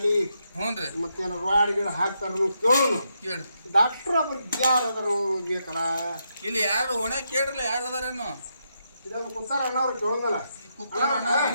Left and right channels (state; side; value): inverted; both; correlation -0.81